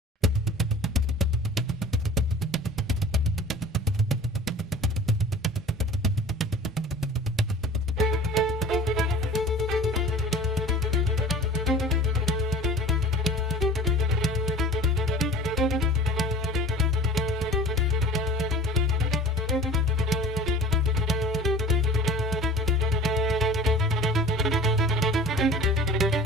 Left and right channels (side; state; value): both; normal; correlation 0.43